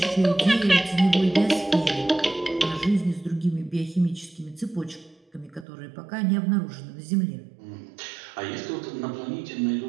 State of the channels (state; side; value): drops out; left; at 5.7 s